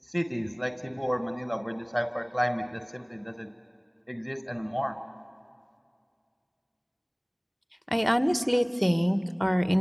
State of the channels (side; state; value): both; identical; correlation 1.00